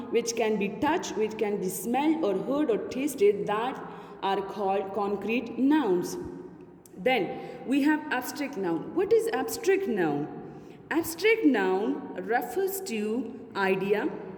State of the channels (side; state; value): both; identical; correlation 1.00